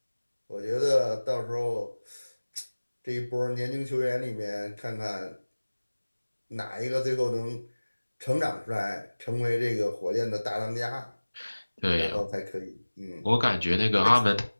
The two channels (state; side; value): inverted; both; correlation -1.00